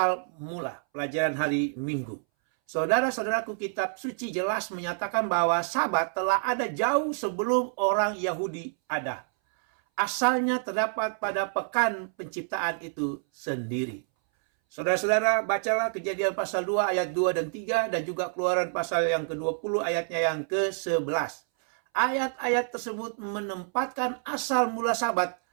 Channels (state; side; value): silent; left; 59 dB below the other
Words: Mula, pelajaran hari Minggu. Saudara-saudaraku, kitab suci jelas menyatakan bahwa Sabat telah ada jauh sebelum orang Yahudi ada. Asalnya terdapat pada pekan penciptaan itu sendiri. Saudara-saudara, bacalah Kejadian pasal 2 ayat 2 dan 3 dan juga Keluaran pasal yang ke-20 ayatnya yang ke-11. Ayat-ayat tersebut menempatkan asal mula Sabat